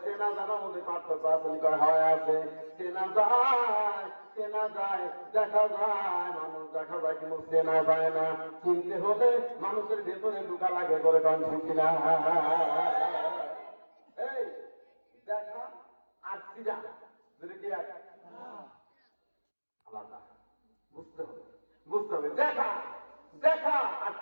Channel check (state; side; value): inverted; both; correlation -1.00